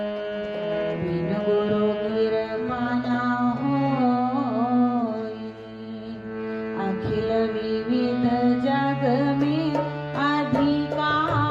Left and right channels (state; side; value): identical; both; correlation 1.00